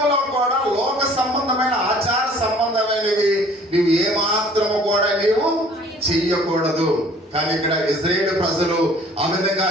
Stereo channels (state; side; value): normal; both; correlation 0.53